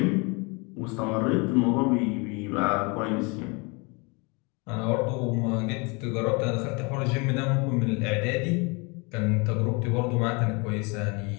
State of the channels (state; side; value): quieter; right; 29.8 dB